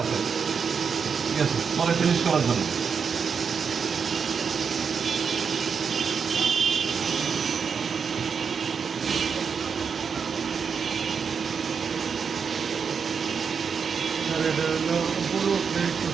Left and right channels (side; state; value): left; quieter; 6.2 dB